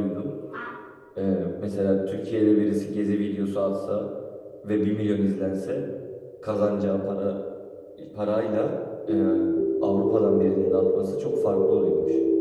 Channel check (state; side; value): identical; both; correlation 1.00